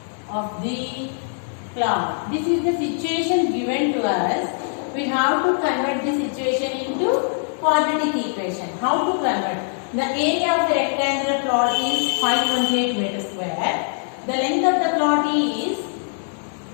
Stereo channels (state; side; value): silent; right; 64 dB below the other